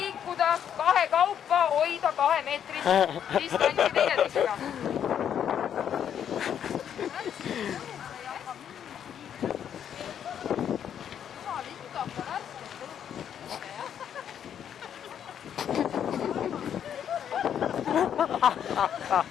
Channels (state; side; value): quieter; right; 9.0 dB